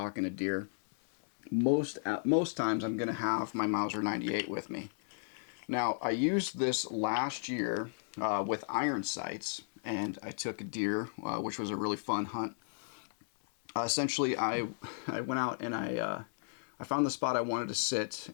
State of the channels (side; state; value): right; silent; digital silence